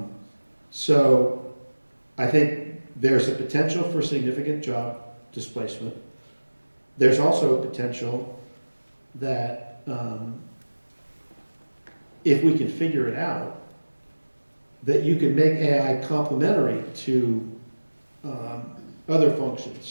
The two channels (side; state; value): both; inverted; correlation -1.00